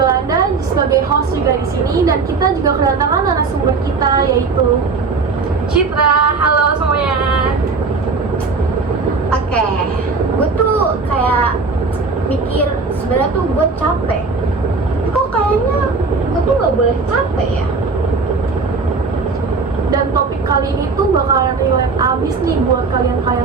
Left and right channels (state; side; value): quieter; left; 4.4 dB